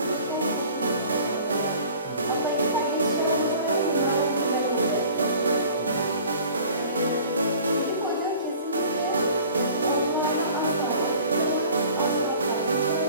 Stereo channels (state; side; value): inverted; both; correlation -0.47